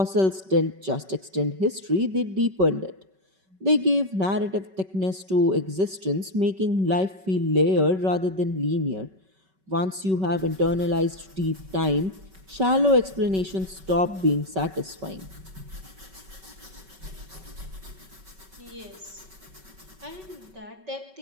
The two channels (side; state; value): left; late; 5.3 ms